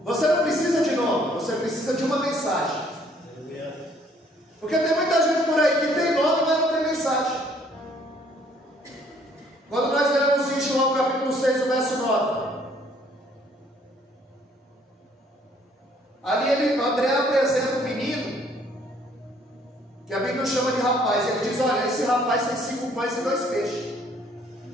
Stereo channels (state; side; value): normal; both; correlation 0.62